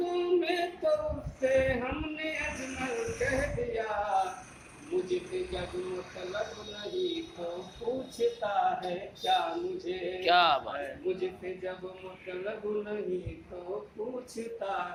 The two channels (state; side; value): identical; both; correlation 1.00